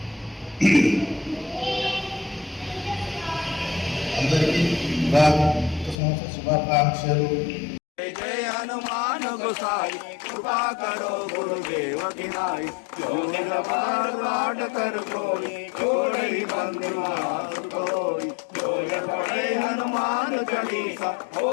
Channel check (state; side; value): drops out; right; at 6.0 s